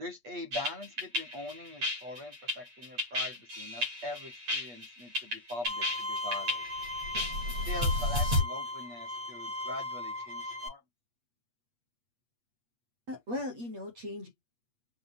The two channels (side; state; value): left; late; 8.3 ms